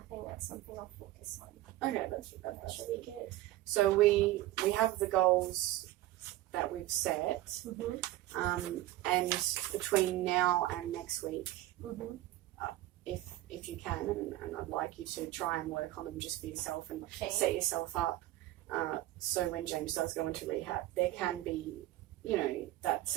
think that's something I'll focus on. Okay, that's really good. So we have the goals that we've set, and between now and next week, if you can, and I'd like you to try and work on them just for yourself and set yourself up, so when James does go into rehab, there can be, you know, that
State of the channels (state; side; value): quieter; left; 15.7 dB